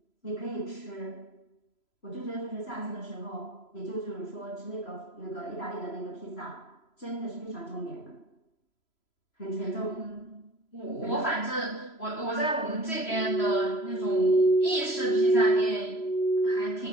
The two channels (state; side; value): late; right; 3.0 ms